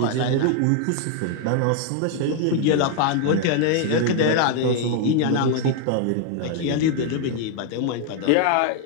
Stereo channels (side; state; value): both; different; correlation 0.00